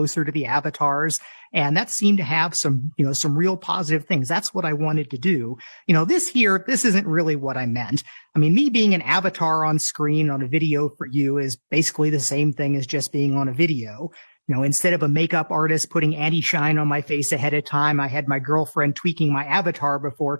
to the avatars. And that seemed to have some, you know, some real positive things. That's what I wanted to do. You know, this isn't really what I meant. I mean, me being an avatar on screen on a video for you is basically the same thing as just being on a video. You know, instead of a makeup artist putting anti-shine on my face ahead of time, I had my girlfriend tweaking my avatar before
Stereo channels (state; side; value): inverted; both; correlation -1.00